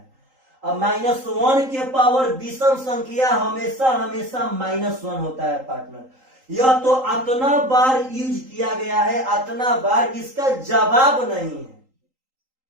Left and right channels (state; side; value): late; left; 3.8 ms